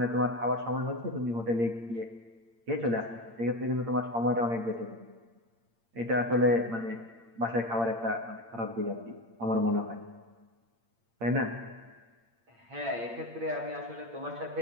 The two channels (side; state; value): left; late; 8.7 ms